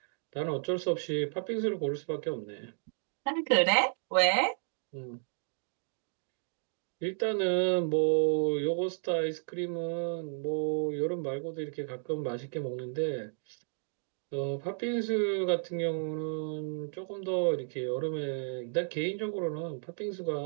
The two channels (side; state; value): left; silent; digital silence